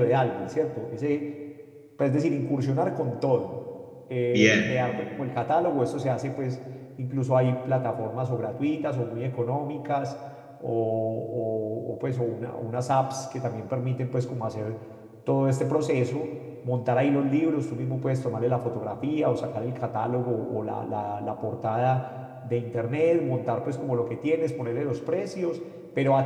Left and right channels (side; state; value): both; identical; correlation 1.00